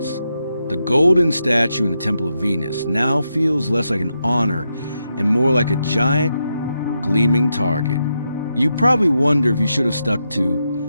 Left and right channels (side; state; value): both; inverted; correlation -0.84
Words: The golden statue in the Temple of Venus now feels less like an honor and more like a giant, gleaming target. You probably wonder if you should have stuck